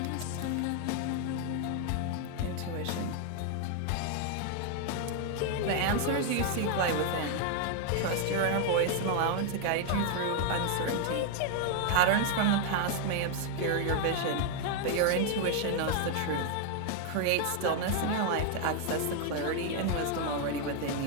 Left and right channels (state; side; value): different; both; correlation 0.00